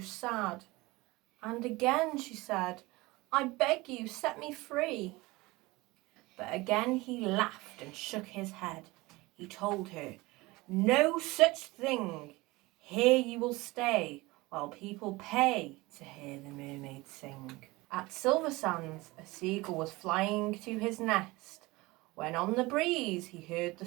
sad. And again she said, "I beg you, set me free." But again he laughed and shook his head. He told her, "No such thing. Here you will stay while people pay to hear the mermaid sing." At Silver Sands, a seagull was flying to his nest, when on the breeze he heard the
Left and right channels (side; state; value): left; quieter; 21.7 dB